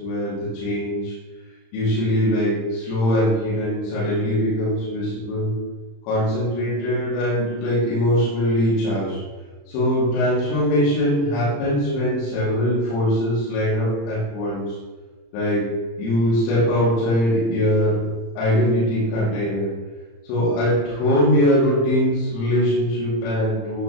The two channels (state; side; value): late; right; 35 ms